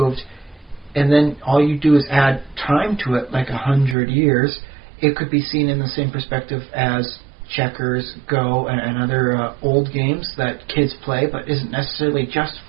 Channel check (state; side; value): drops out; left; at 4.0 s